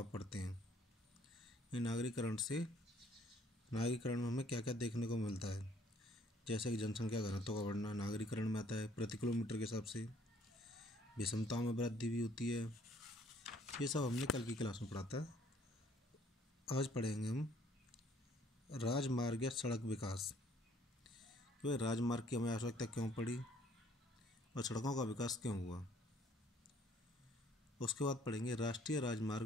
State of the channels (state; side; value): normal; both; correlation 0.61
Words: पड़ते हैं। ये नागरीकरण में हमें क्या क्या देखने को मिलता है, जैसे कि जनसंख्या घनत्व का बढ़ना नागरीकरण में आता है। प्रति किलोमीटर के हिसाब से विषमताओं में वृद्धि भी होती है। ये सब हमने कल की क्लास में पढ़ा था। आज पढ़ेंगे हम राजमार्ग या सड़क विकास। तो राजमार्ग की हमें आवश्यकता क्यों पड़ी और सड़कों का विकास क्यों हुआ। उसके बाद पढ़ेंगे राष्ट्रीय